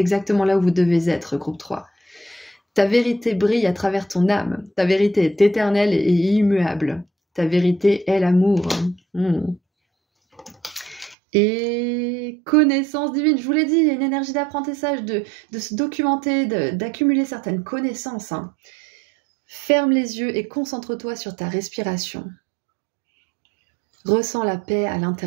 là où vous devez être, groupe 3. Ta vérité brille à travers ton âme. Ta vérité est éternelle et immuable. Ta vérité est l'amour. Et connaissance divine, je vous l'ai dit, il y a une énergie d'apprentissage, de se documenter, d'accumuler certaines connaissances. Hein. Ferme les yeux et concentre-toi sur ta respiration. Ressens la paix à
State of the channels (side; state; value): left; drops out; at 11.2 s